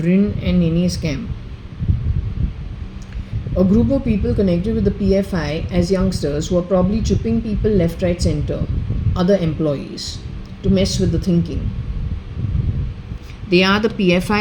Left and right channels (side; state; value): both; identical; correlation 1.00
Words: and Nene's camp. A group of people connected with the PFI as youngsters who are probably chipping people left, right, center, other employees, to mess with the thinking. They are the